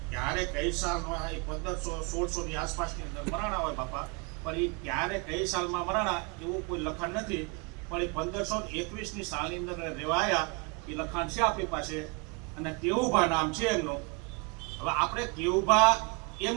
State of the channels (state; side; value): quieter; left; 31.6 dB